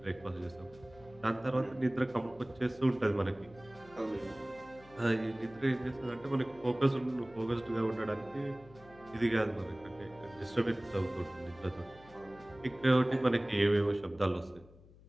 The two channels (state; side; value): noise; left; hum, 23 dB below the sound